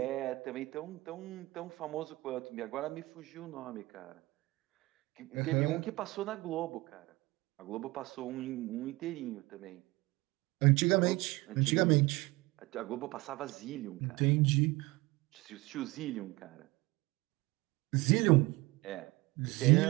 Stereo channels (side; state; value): left; quieter; 21.6 dB